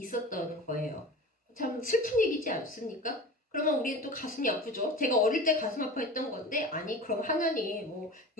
거예요. 참 슬픈 얘기지 않습니까? 그러면 우리는 또 가슴이 아프죠. 제가 어릴 때 가슴 아파했던 건데 아니 그럼 하나님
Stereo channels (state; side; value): normal; both; correlation 0.34